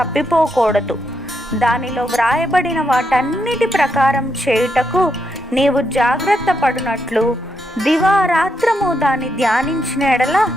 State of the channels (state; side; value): normal; both; correlation 0.81